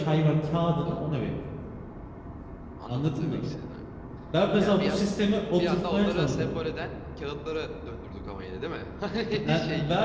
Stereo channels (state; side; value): identical; both; correlation 1.00